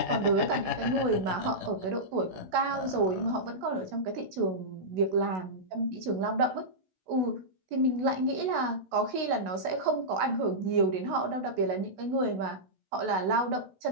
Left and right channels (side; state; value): left; late; 16 ms